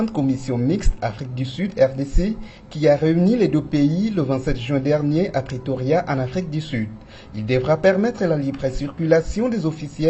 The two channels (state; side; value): identical; both; correlation 1.00